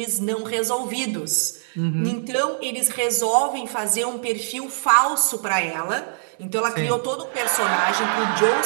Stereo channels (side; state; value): left; silent; digital silence